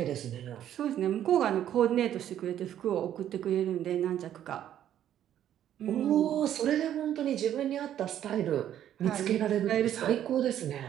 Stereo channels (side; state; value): left; quieter; 10.9 dB